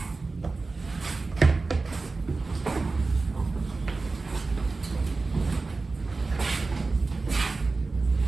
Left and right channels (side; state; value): left; quieter; 3.8 dB